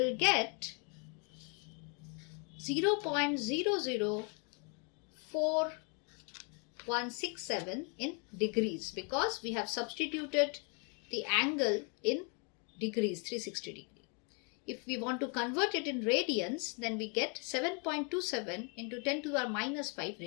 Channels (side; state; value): right; quieter; 36.7 dB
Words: get 0.004167 in degrees, because we have substituted the angle in degrees, 360 degree. If we want to convert it in radians, then we get 7.27 into 10 to the minus 5